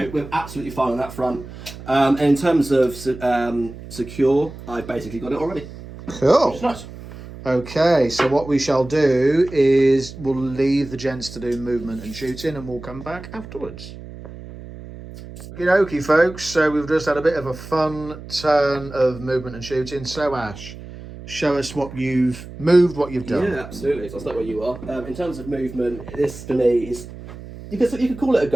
we're absolutely fine on that front. And in terms of secure, I've basically got it already. Cool. Nice. Okay, so what we shall do is we'll leave the gents to do movement and shooting, and we'll come back afterwards. Okie dokie, folks. So we've just had a bit of a fun turn of movement and shooting. So Ash, show us what you've moved, what you've done. Yeah, absolutely. So I'll start where you are. In terms of movement, this for me is you could call it a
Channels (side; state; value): right; noise; hum, 14 dB below the sound